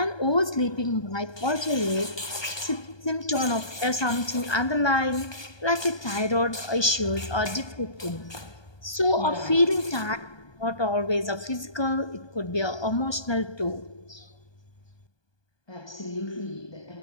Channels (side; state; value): right; late; 1.2 ms